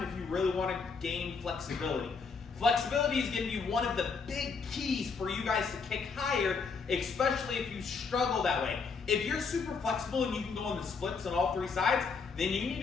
if you really want to gain flexibility. Flexibility is going to be one of the big keys for you guys to kick higher, especially if you struggle that way. If you're super flexible and you can go on the splits on all 3 sides, then you need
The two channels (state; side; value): quieter; right; 5.1 dB